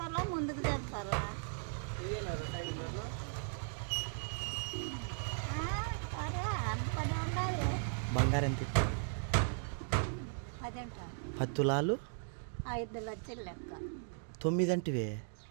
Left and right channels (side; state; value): left; silent; digital silence